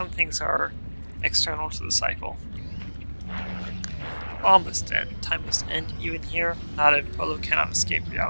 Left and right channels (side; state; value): both; inverted; correlation -1.00